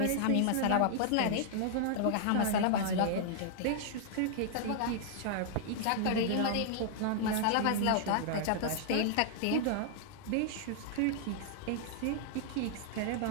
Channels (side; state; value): both; different; correlation -0.01